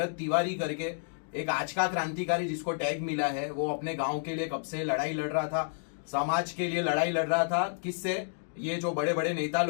तिवारी करके एक आज का क्रांतिकारी जिसको टैग मिला है, वो अपने गांव के लिए कब से लड़ाई लड़ रहा था, समाज के लिए लड़ाई लड़ रहा था। किससे? ये जो बड़े बड़े नेता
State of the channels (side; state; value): right; silent; digital silence